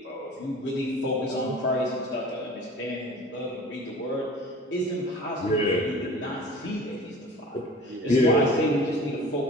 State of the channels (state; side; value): normal; both; correlation 0.42